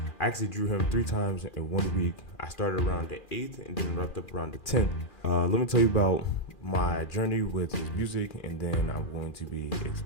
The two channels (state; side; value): late; right; 2.4 ms